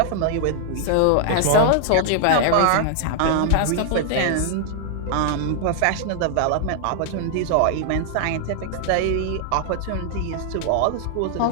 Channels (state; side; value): different; both; correlation 0.00